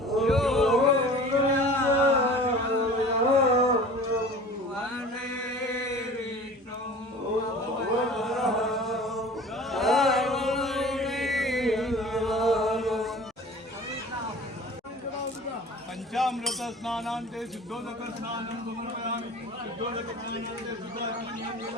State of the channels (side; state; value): both; normal; correlation 0.42